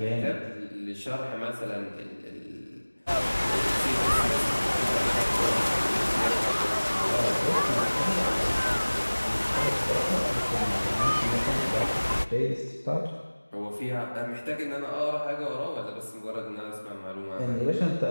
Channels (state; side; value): inverted; both; correlation -1.00